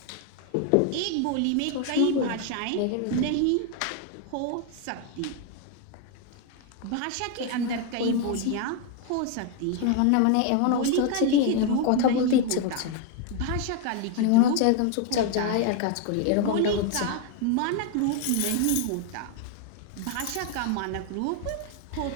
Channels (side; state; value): both; different; correlation 0.01